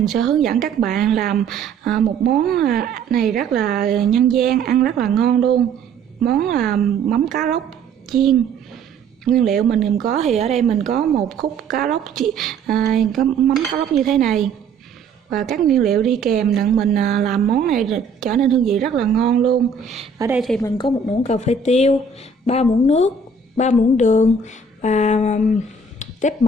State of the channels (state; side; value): quieter; left; 4.6 dB